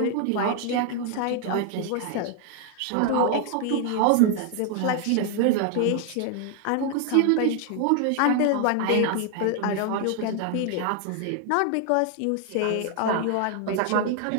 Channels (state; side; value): different; both; correlation 0.00